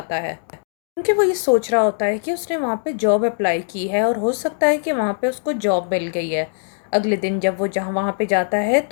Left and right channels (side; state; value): right; silent; digital silence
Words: है, क्योंकि वो ये सोच रहा होता है कि उसने वहाँ पे जॉब अप्लाई की है और हो सकता है कि वहाँ पे उसको जॉब मिल गई है। अगले दिन जब वो जहाँ वहाँ पे जाता है